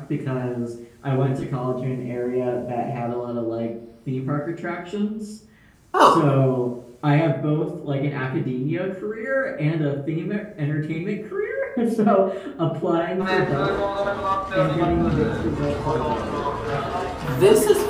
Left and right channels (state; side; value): identical; both; correlation 1.00